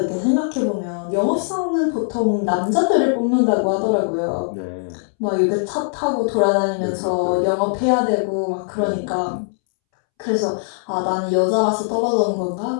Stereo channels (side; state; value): right; silent; 65 dB below the other